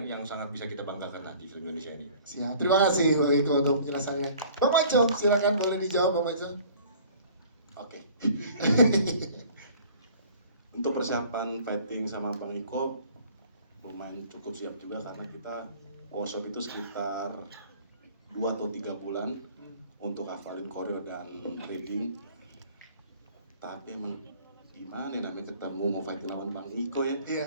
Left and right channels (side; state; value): both; inverted; correlation -0.50